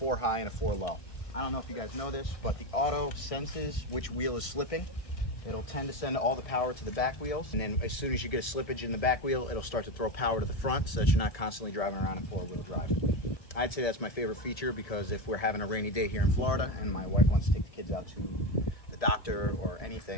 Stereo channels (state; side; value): late; right; 1.7 ms